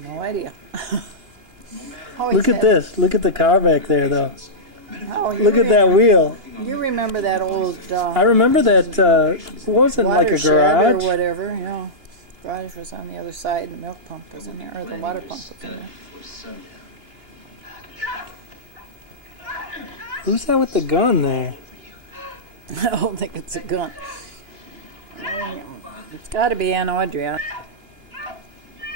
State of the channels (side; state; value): left; late; 2.9 ms